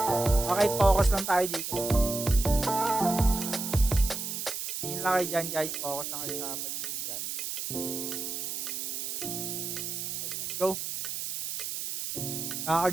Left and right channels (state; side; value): noise; right; hiss, 4 dB below the sound